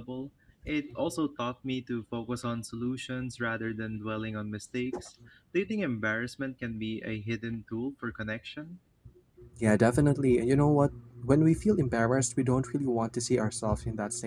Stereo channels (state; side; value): identical; both; correlation 1.00